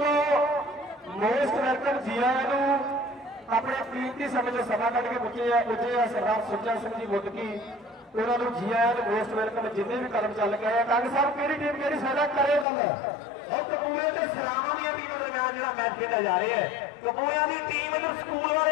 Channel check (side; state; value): right; drops out; at 12.7 s